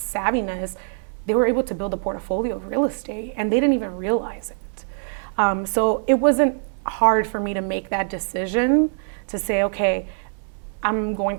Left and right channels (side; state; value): left; silent; 63 dB below the other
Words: savviness, they were able to build a portfolio of real estate, and they didn't even realize it. So it wasn't hard for me to make that decision to say, okay, I'm